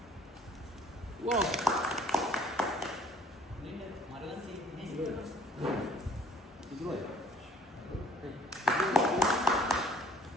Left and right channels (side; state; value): both; normal; correlation 0.58